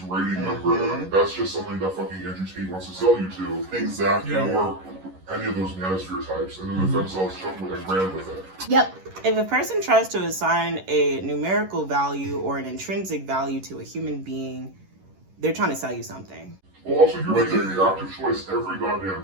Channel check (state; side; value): late; left; 11 ms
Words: rating number. That's just something that fucking Andrew Tate wants to sell you to. Exactly. Or any of those manosphere types. And then the themselves took with and ran with it. Yep. If a person tries to assign a numerical value or an intrinsic value to a human being, they're trying to sell you something. Well, also, you're making the active choice every goddamn